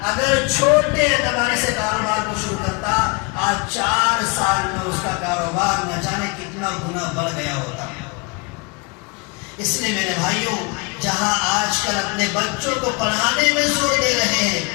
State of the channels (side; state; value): right; quieter; 29.7 dB